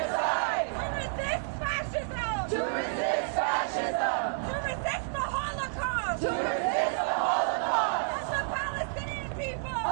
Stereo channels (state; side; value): silent; left; 58 dB below the other